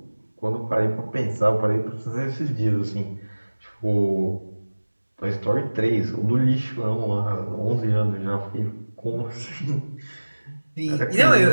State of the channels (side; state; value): both; inverted; correlation -1.00